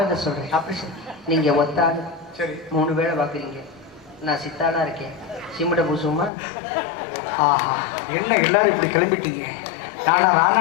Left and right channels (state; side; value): drops out; right; at 6.3 s